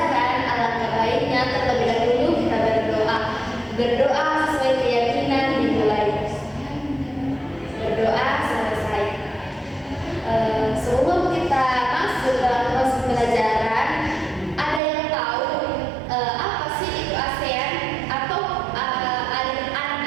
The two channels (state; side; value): drops out; left; at 14.8 s